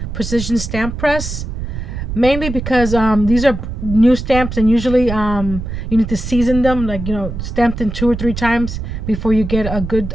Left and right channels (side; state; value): right; noise; rumble, 6 dB below the sound